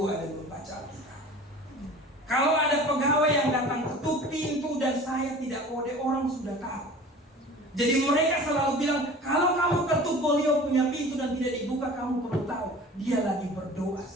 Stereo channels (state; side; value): normal; both; correlation 0.41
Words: dan membaca Alkitab. Kalau ada pegawai yang datang ketuk pintu dan saya tidak kode, orang sudah tahu. Jadi mereka selalu bilang, kalau kamu ketuk Bolio punya pintu dan tidak dibuka, kamu perlu tahu dia lagi berdoa